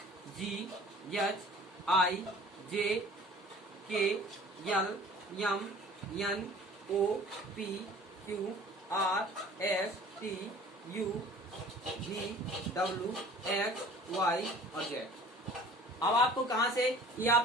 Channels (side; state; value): both; normal; correlation 0.48